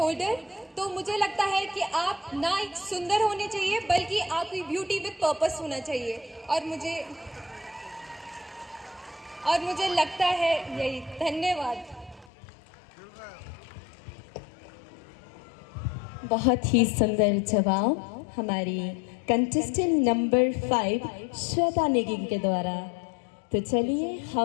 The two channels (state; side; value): drops out; right; at 12.3 s